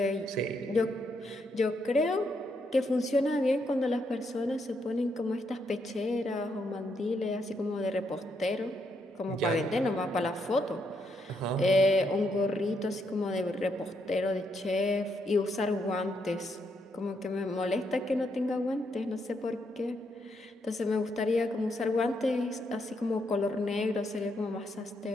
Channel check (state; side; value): normal; both; correlation 0.77